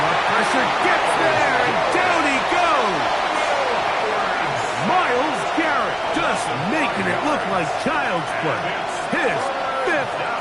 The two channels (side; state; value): both; identical; correlation 1.00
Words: pressure gets there, and down he goes. Myles Garrett just making it look like child's play. His 5th